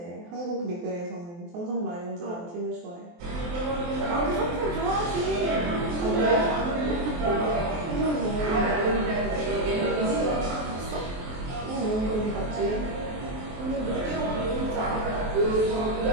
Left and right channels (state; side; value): late; left; 23 ms